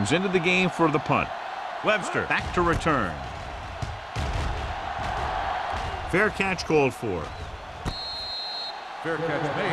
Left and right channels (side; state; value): both; identical; correlation 1.00